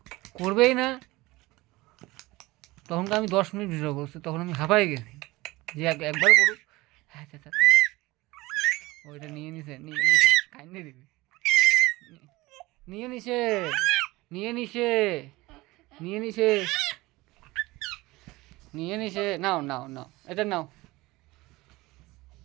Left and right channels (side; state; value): left; quieter; 20.6 dB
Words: করবেই না। তখন তো আমি 10 মিনিট ভিডিও করছি, তখন আমি হাঁপাই গেছি যে একবার করুক। হ্যাঁ আচ্ছা আচ্ছা, ওইটা নিয়ে নিছে, কাইন্ডে দিবি, নিয়ে নিছে, নিয়ে নিছে, নিয়ে নিছে, নিয়ে নিছে। নাও নাও নাও, এটা নাও,